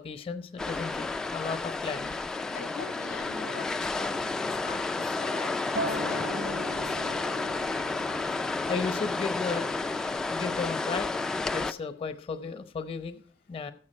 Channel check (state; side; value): quieter; right; 3.2 dB